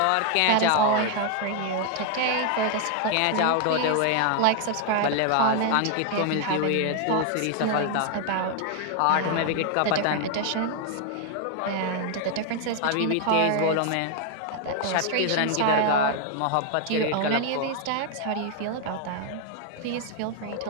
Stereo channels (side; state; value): both; different; correlation 0.00